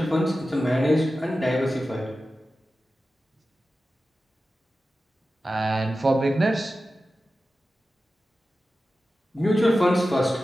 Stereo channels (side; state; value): both; normal; correlation 0.93